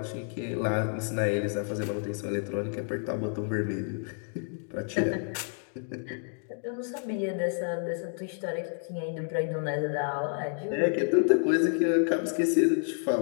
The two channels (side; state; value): right; silent; 58 dB below the other